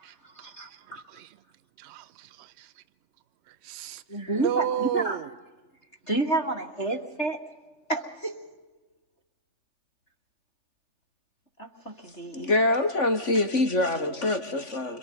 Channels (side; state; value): right; late; 3.5 ms